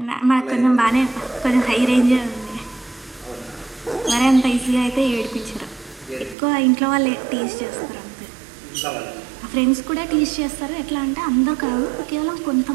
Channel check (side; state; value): left; drops out; at 6.4 s